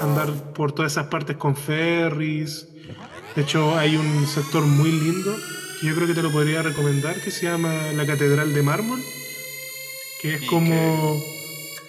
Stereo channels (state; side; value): identical; both; correlation 1.00